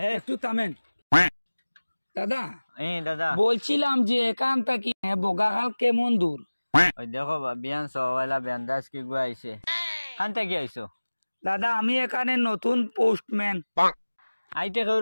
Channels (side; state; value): both; inverted; correlation -1.00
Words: একটু থামেন দাদা। দাদা বলছিলাম যে এখান থেকে বগাখাল কেমন দূর? ওই দেখো বিয়ান সওয়ালা বিয়ানদাস কি গো আইছে খান থেকে আইছো দাদা আমি এখানে নতুন পোস্টম্যান। আইতে